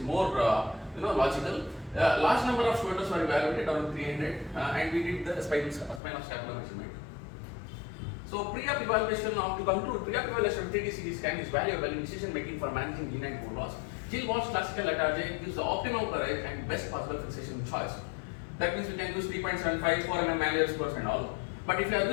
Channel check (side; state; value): right; drops out; at 6.0 s